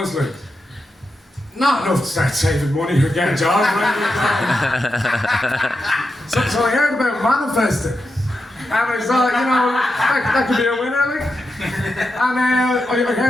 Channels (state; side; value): normal; both; correlation 0.88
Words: Like, not enough to start saving money or get a job, right? So I heard about manifesting. And I thought, you know, that could be a winner, like. And I